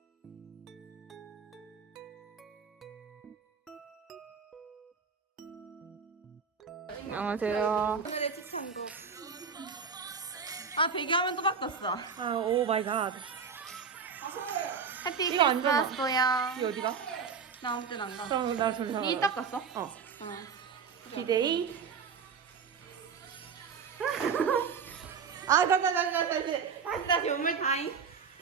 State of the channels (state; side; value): quieter; left; 6.0 dB